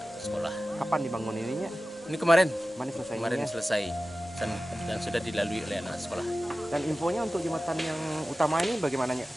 sekolah. Kapan dibangun ininya? Ini kemarin Kemarin selesai dan sudah dilalui oleh anak sekolah. Dan infonya untuk jembatan yang utama ini bagaimananya?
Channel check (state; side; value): normal; both; correlation 0.95